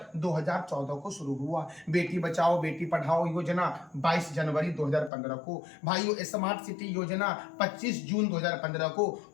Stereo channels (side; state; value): right; drops out; at 5.1 s